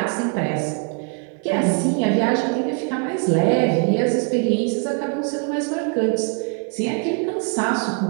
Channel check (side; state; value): left; quieter; 39.0 dB